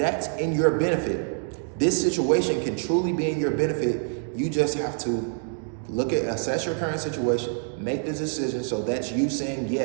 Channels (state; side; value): silent; left; 59 dB below the other